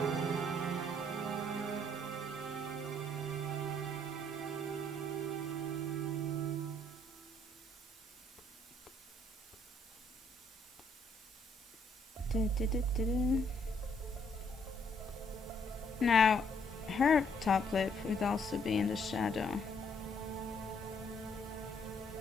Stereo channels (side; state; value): both; normal; correlation 0.67